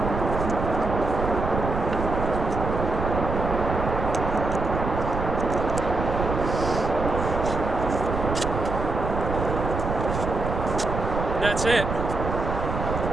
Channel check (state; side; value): noise; right; rumble, 4 dB below the sound